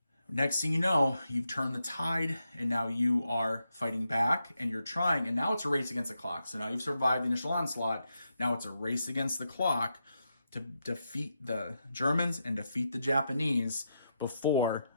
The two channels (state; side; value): inverted; both; correlation -0.85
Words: Next thing you know, you've turned the tide, and now you are fighting back, and you're trying, and now it's a race against the clock. So now you've survived the initial onslaught. Now it's a race against the clock to defeat the Germans and defeat the Japanese before